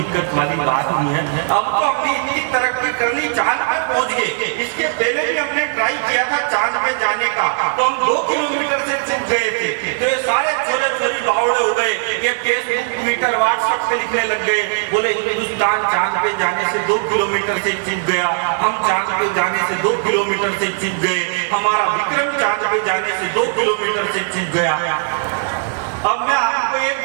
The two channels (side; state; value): left; silent; digital silence